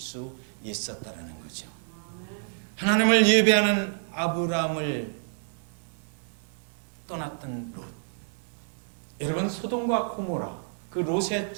있었다라는 거죠. 하나님을 예배하는 아브라함을 떠났던 롯. 여러분, 소돔과 고모라 그 롯의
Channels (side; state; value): left; silent; digital silence